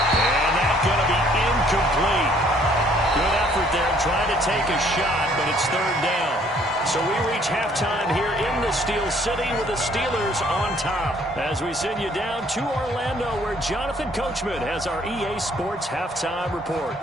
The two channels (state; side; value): normal; both; correlation 0.62